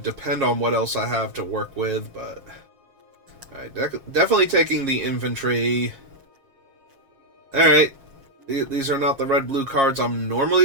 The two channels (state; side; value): late; left; 7.3 ms